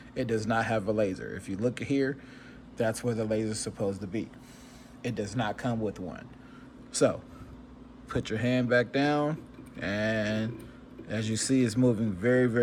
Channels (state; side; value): identical; both; correlation 1.00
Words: it does not have a laser. If you look here, that's where the laser is supposed to be. It does not come with one. So put your hand back down, and as you see, it's moving very,